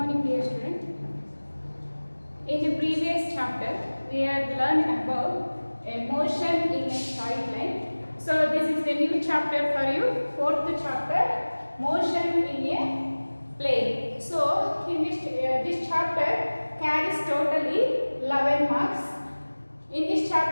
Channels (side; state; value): both; inverted; correlation -1.00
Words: dear student. In the previous chapter, we have learned about a motion in a straight line. So this is the new chapter for you, fourth chapter, motion in a plane. So in this chapter carries totally 11 marks. In this